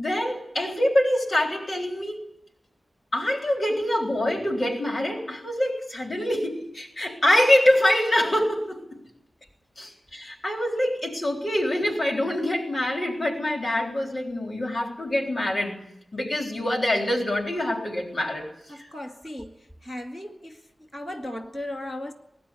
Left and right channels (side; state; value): both; normal; correlation 0.95